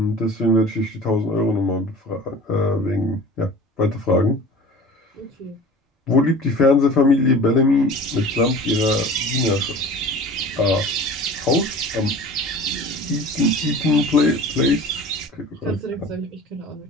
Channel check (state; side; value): normal; both; correlation 0.41